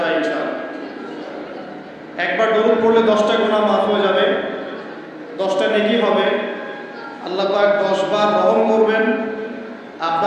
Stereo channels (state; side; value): identical; both; correlation 1.00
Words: ইনশাআল্লাহ। একবার দরুদ পড়লে 10টা গুনাহ মাফ হয়ে যাবে, 10টা নেকি হবে। আল্লাহ পাক 10 বার রহম করবেন,